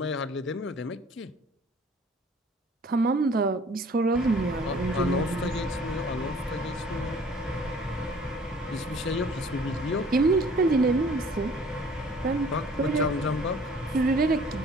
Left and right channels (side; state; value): both; normal; correlation 0.52